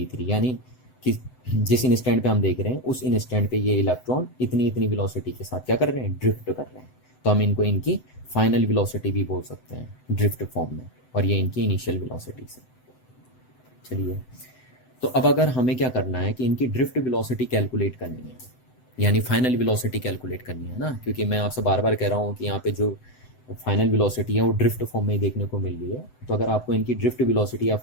यानी कि जिस इंस्टेंट पे हम देख रहे हैं उस इंस्टेंट पे ये इलेक्ट्रॉन इतनी इतनी वेलोसिटी के साथ क्या कर रहे हैं? ड्रिफ्ट कर रहे हैं। तो हम इनको इनकी फाइनल वेलोसिटी भी बोल सकते हैं ड्रिफ्ट फॉर्म में, और ये इनकी इनिशियल वेलोसिटी से। चलिए, तो अब अगर हमें क्या करना है कि इनकी ड्रिफ्ट वेलोसिटी कैलकुलेट करनी है, यानी फाइनल वेलोसिटी कैलकुलेट करनी है ना, क्योंकि मैं आपसे बार बार कह रहा हूँ कि यहाँ पे जो फाइनल वेलोसिटी है वो ड्रिफ्ट फॉर्म में ही देखने को मिल रही है। तो अगर आपको इनकी ड्रिफ्ट वेलोसिटी या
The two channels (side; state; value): right; late; 7.9 ms